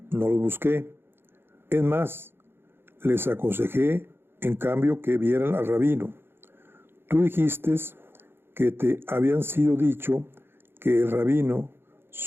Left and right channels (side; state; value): left; late; 0.11 ms